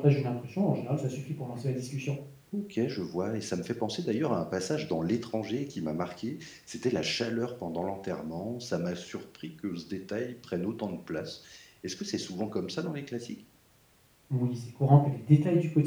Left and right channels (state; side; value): identical; both; correlation 1.00